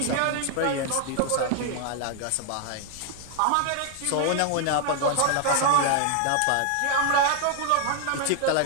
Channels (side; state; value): both; different; correlation 0.00